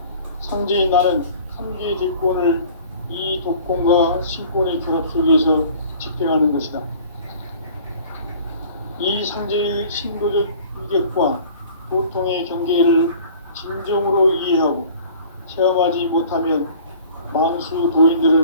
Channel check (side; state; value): both; inverted; correlation -0.47